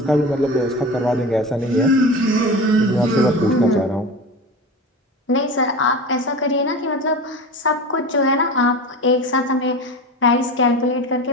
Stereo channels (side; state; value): both; normal; correlation 0.30